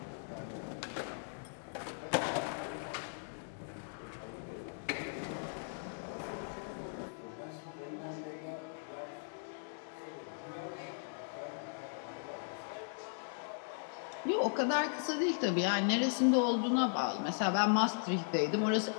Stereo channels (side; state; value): right; silent; digital silence